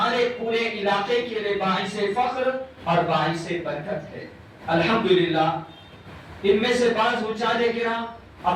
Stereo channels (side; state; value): both; identical; correlation 1.00